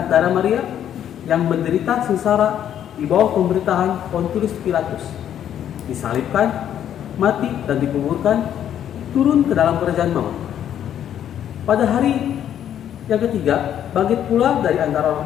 darah Maria, yang menderita sengsara di bawah pemerintahan Pontius Pilatus, disalibkan, mati dan dikuburkan, turun ke dalam kerajaan maut. Pada hari yang ketiga, bangkit pula dari antara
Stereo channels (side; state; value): right; quieter; 10.1 dB